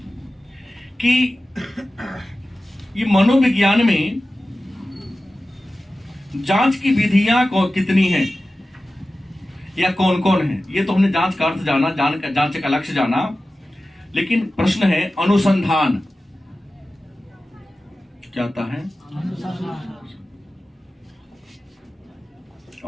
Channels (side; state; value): both; normal; correlation 0.95